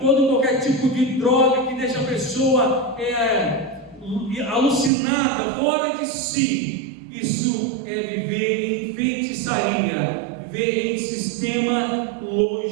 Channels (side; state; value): left; drops out; at 4.9 s